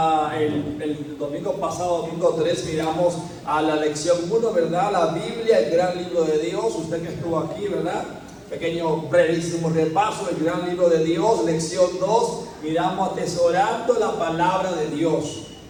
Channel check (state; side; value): identical; both; correlation 1.00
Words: el domingo pasado, domingo 3, miramos a la lección 1, ¿verdad? La Biblia, el gran libro de Dios. Usted que estuvo aquí, ¿verdad? Pequeño, brevísimo repaso, el gran libro de Dios. Lección 2, miramos atesorando la palabra de Dios.